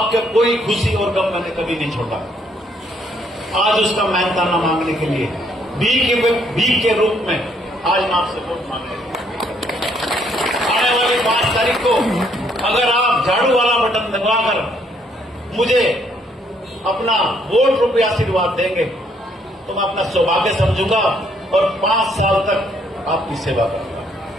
कोई खुशी और गम मैंने कभी नहीं छोड़ा। आज उसका मेहनताना मांगने के लिए भीख के रूप में आज मैं आपसे वोट मांगने आने वाली 5 तारीख को अगर आप झाड़ू वाला बटन दबाकर मुझे अपना वोट रूपी आशीर्वाद देंगे तो मैं अपना सौभाग्य समझूंगा और 5 साल तक आपकी सेवा करूंगा।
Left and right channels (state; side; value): normal; both; correlation 0.69